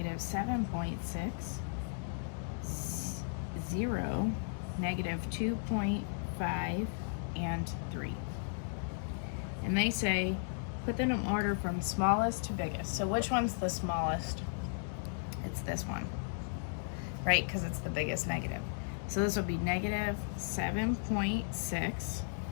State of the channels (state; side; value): silent; right; digital silence